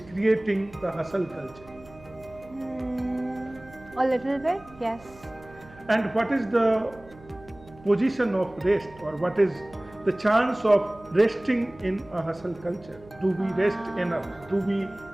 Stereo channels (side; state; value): right; noise; hum, 22 dB below the sound